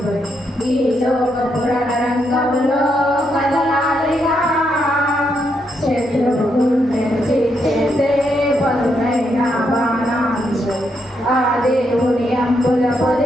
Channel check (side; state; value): both; normal; correlation 0.79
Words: ఈ లోక పురాణ రంగంలో కదలాలిగా శత్రువు గుండెను చేసే పదునైన బాణాలు ఆ దేవుని అంబుల